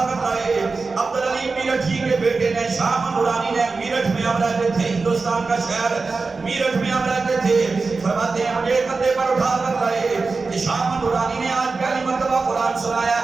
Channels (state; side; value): quieter; left; 4.1 dB